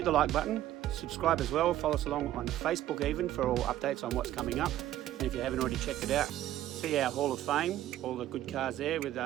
the like button, subscribe as well, follow us along on Facebook even for all updates on what's coming up. And if you haven't already checked it out, see our Hall of Fame, all the good cars there with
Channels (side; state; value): left; quieter; 13.2 dB